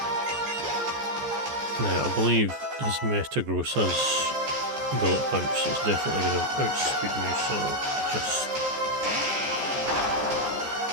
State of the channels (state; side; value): late; left; 14 ms